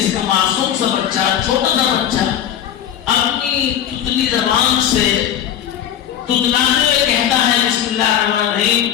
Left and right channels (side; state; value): right; quieter; 10.3 dB